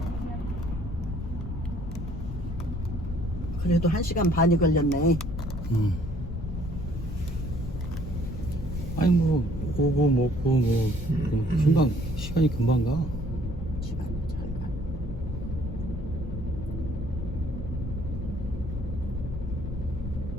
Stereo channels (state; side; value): noise; left; rumble, 7 dB below the sound